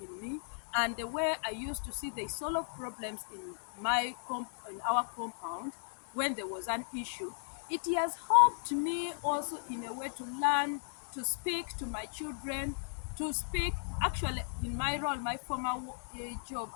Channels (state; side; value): silent; right; digital silence